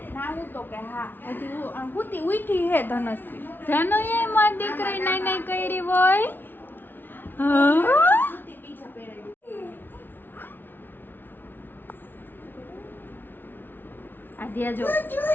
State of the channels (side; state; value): right; late; 0.096 ms